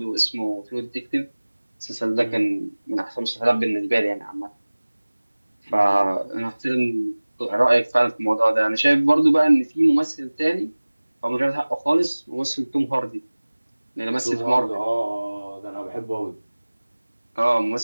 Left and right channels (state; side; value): inverted; both; correlation -1.00